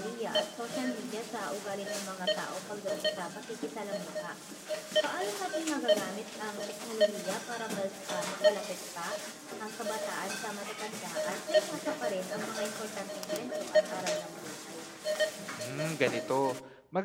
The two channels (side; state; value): both; identical; correlation 1.00